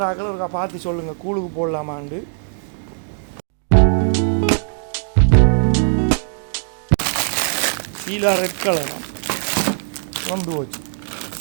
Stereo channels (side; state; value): left; silent; digital silence